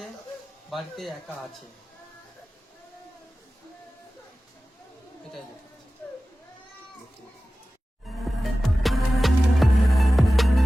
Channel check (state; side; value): normal; both; correlation 0.96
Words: বাড়িতে একা আছে, এটাই লেখা আছে।